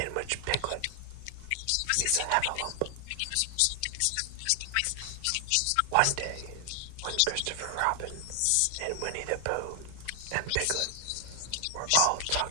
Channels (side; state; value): both; different; correlation 0.00